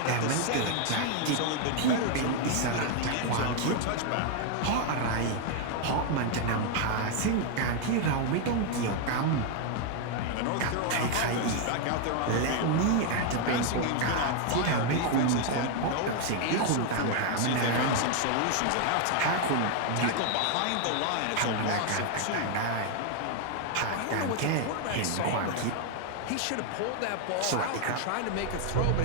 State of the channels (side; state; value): both; different; correlation 0.00